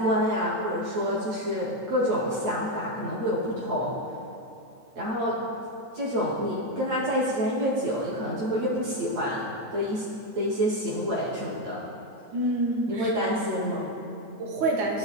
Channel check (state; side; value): late; left; 8.8 ms